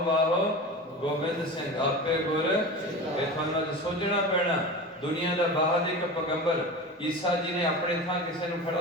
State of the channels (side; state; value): both; normal; correlation 0.30